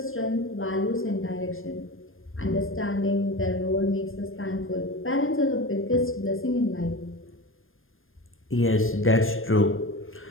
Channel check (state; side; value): late; right; 0.59 ms